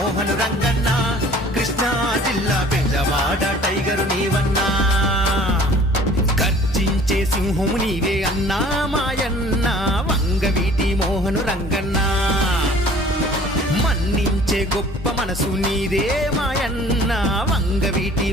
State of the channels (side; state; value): both; normal; correlation 0.50